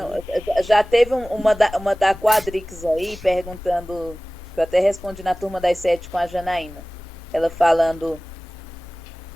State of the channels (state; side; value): normal; both; correlation 0.98